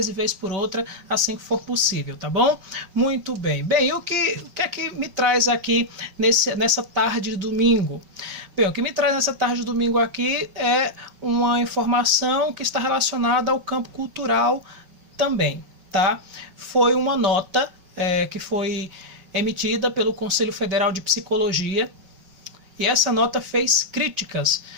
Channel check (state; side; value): late; left; 5.3 ms